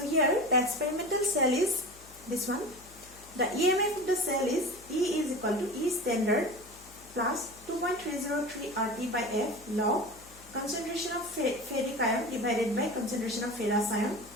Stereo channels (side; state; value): left; noise; hum, 23 dB below the sound